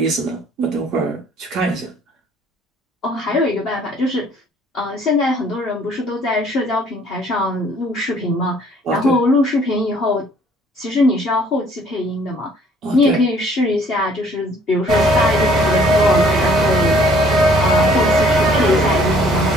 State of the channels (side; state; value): both; normal; correlation 0.58